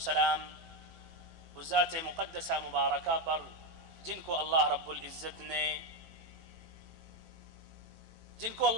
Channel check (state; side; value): late; left; 18 ms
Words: اس ذات مقدسہ مبارکہ پر جن کو اللہ رب العزت